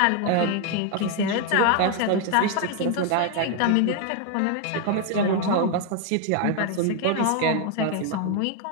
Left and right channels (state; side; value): different; both; correlation 0.01